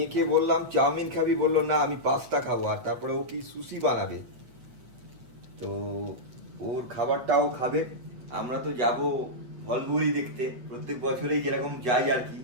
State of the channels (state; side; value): late; left; 8.1 ms